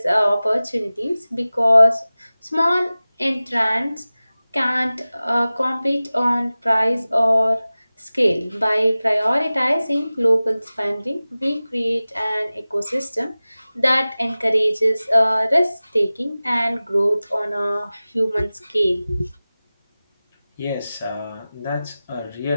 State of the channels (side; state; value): both; inverted; correlation -0.97